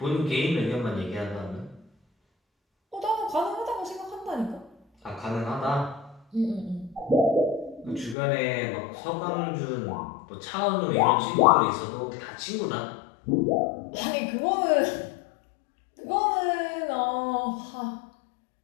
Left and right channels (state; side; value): drops out; right; at 8.2 s